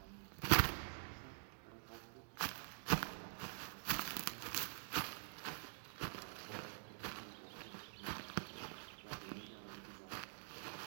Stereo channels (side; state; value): left; silent; digital silence